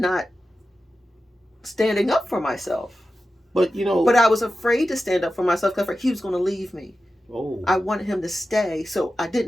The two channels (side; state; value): both; normal; correlation 0.93